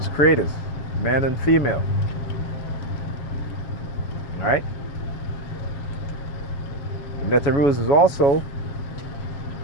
creators, man and female. Right? Neterus is also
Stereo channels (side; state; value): right; late; 7.2 ms